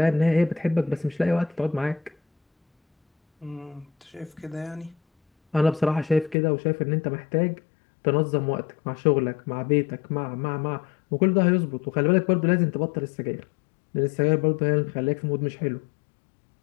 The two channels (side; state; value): right; drops out; at 6.4 s